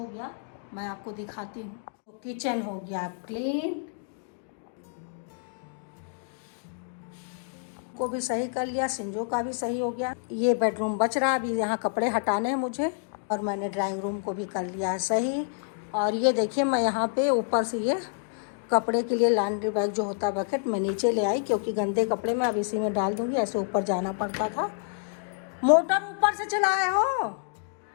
गया, मैं आपको दिखाती हूँ। तो किचन हो गया क्लीन, को भी सही कर लिया, सिंजो का भी सही हो गया। ये बेडरूम बच रहा, अभी यहाँ कपड़े हटाने हैं मुझे, और मैंने ड्राइंग रूम को भी कर लिया है सही। और ये देखिए मैं यहाँ पे ऊपर से ये कपड़े के लिए लॉन्ड्री बैग जो होता है बकेट, मैं नीचे ले आई क्योंकि गंदे कपड़े मैं अब इसी में डाल दूँगी, ऐसे ऊपर जाना पड़ता था। मोटर ऊपर से चलाए हो,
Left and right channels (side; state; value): right; silent; digital silence